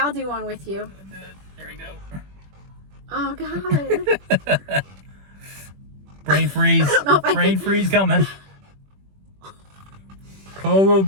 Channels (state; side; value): late; left; 21 ms